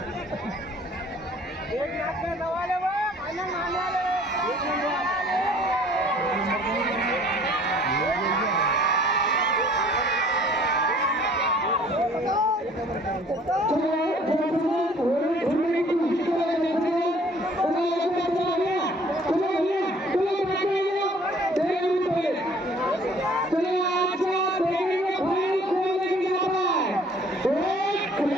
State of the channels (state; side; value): normal; both; correlation 0.54